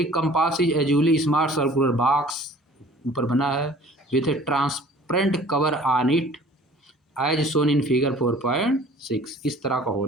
compass is usually small circular box, ऊपर बना है, with a transparent cover on it as shown in figure 4.6, इस तरह का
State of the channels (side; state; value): both; normal; correlation 0.50